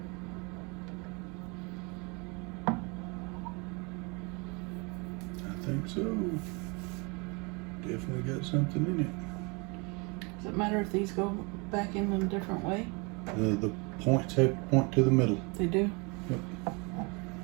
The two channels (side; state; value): left; quieter; 30.2 dB